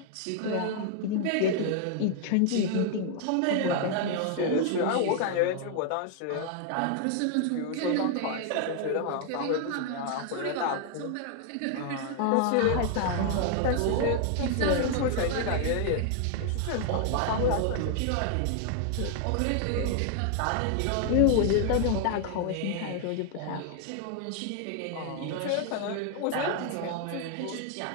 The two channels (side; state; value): both; different; correlation 0.00